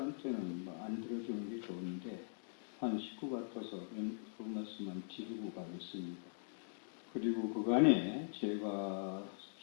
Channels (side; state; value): right; silent; digital silence